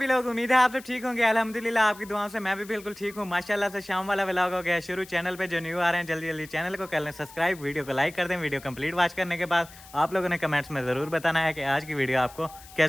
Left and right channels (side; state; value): left; noise; hiss, 20 dB below the sound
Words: लोग उम्मीद है आप सब ठीक होंगे अल्हम्दुलिल्लाह आपकी दुआओं से मैं भी बिल्कुल ठीक हूँ माशाल्लाह से शाम वाला व्लॉग हो गया शुरू चैनल पे जो न्यू आ रहे हैं जल्दी जल्दी चैनल को कर लें सब्सक्राइब वीडियो को लाइक कर दें वीडियो कंप्लीट वॉच करने के बाद आप लोगों ने कमेंट्स में ज़रूर बताना है कि आज की वीडियो आपको